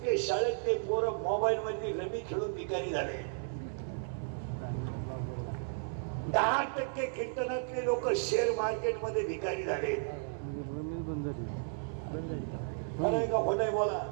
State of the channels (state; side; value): silent; left; 55 dB below the other